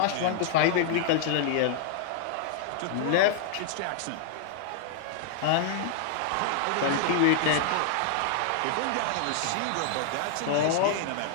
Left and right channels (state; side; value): different; both; correlation -0.01